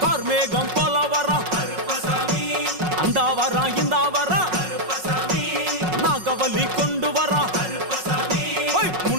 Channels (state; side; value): late; left; 5.4 ms